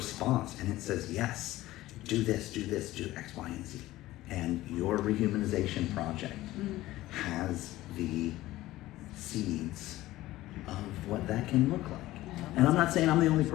and it says, yes, do this, do X, Y, and Z. And your rehumanization project has the seeds of what that can look like. And I'm not saying I'm the only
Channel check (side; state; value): right; quieter; 16.6 dB